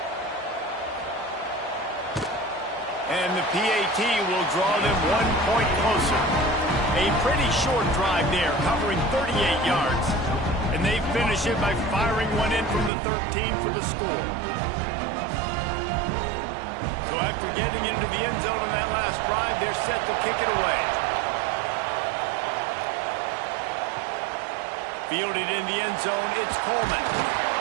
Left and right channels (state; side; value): drops out; left; at 12.9 s